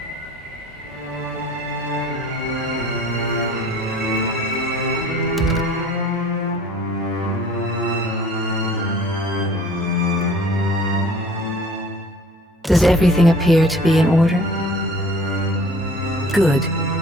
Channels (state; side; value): normal; both; correlation 0.49